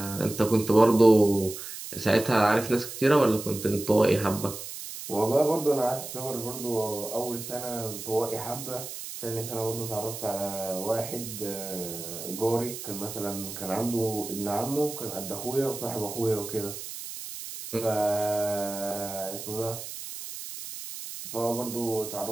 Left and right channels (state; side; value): noise; right; hiss, 9 dB below the sound